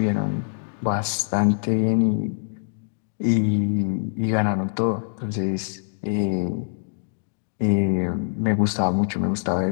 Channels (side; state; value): right; silent; digital silence